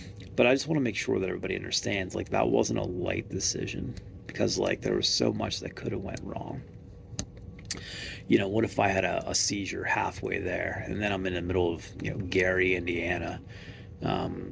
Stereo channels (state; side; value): identical; both; correlation 1.00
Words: But I just want to make sure that everybody understands, like, that wasn't a light decision. Because, like, there was so much that could have went wrong. What if I had a seizure halfway there? And then I'm in the middle of, Gary, Indiana.